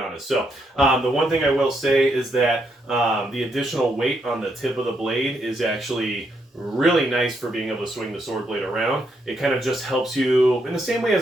So the one thing I will say is that the additional weight on the tip of the blade is actually really nice for being able to swing the sword blade around. It kind of just helps you in the same way as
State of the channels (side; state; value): both; normal; correlation 0.77